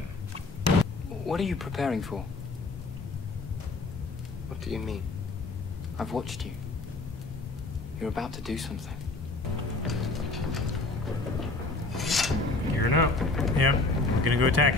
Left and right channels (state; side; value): quieter; right; 3.3 dB